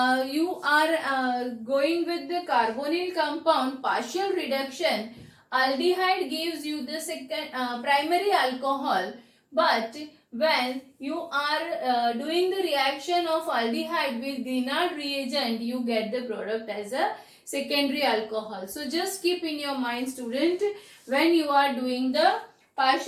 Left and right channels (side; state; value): both; identical; correlation 1.00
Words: you are going with the carbonyl compound partial reduction, aldehyde gives you the second primary alcohol, but when you are doing the reaction of aldehyde with Grignard reagent, you get the product as a secondary alcohol. So just keep in your mind, student, when you are doing the